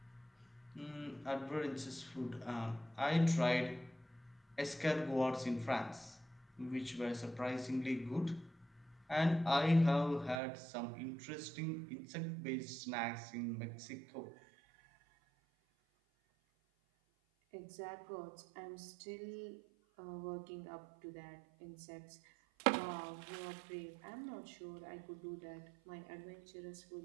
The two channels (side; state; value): left; drops out; at 10.4 s